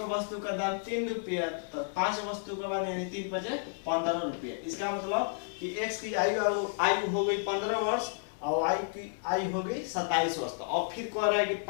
वस्तु का दाम 3 रुपया, तो 5 वस्तु के बाद यानी 3 पचे 15 रुपया। इसका मतलब कि x की आयु हो गई 15 वर्ष और y की आयु हो गई 27 वर्ष। तो अब फिर कह रहा है कि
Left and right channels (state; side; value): silent; right; digital silence